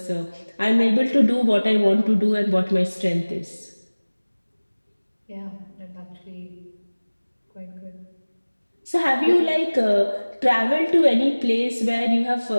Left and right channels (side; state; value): both; inverted; correlation -1.00